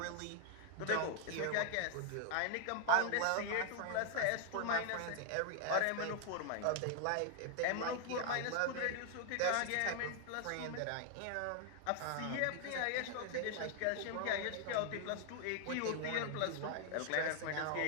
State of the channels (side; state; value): both; different; correlation 0.00